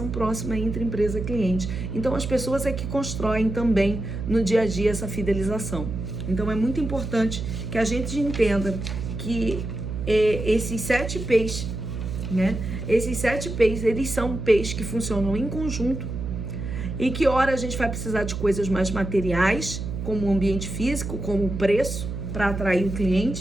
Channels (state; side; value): noise; right; hum, 5 dB below the sound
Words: próxima entre empresa e cliente. Então as pessoas é que constroem também no dia a dia essa fidelização. Então é muito importante que a gente entenda que esses 7 P's, né? Esses 7 P's, eles são P's que funcionam em conjunto e que ora a gente vai precisar de coisas mais materiais, como o ambiente físico, como o preço, para atrair o